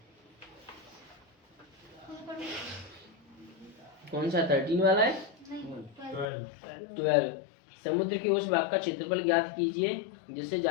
कौन सा 13 वाला है, 12। समुद्र के उस भाग का क्षेत्रफल ज्ञात कीजिए जिससे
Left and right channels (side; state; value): right; drops out; at 6.2 s